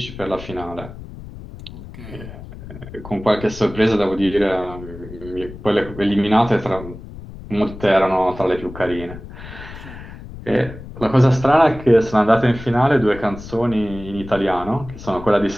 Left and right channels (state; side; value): noise; left; rumble, 14 dB below the sound